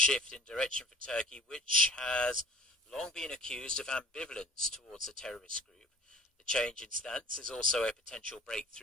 in direction for Turkey, which has long been accused of ambivalence towards the terrorist group. The change in stance is also a potential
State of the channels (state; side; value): normal; both; correlation 0.48